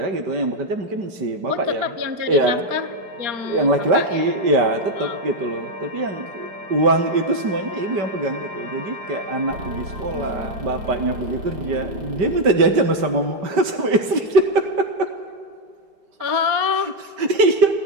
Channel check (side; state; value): left; late; 5.1 ms